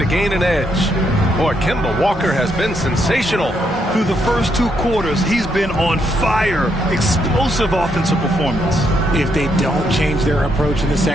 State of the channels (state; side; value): normal; both; correlation 0.76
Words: gain an edge. Boy, Kemba Walker has been sensational. Through the first 2 quarters, he's been on fire. Explosive offensive performance. If they don't change their approach in the